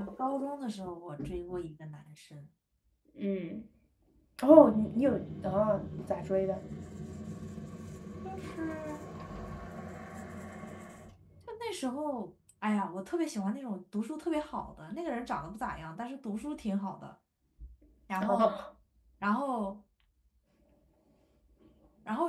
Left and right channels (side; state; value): both; identical; correlation 1.00